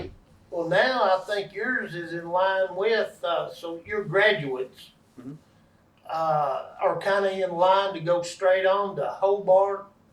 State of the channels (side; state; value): both; identical; correlation 1.00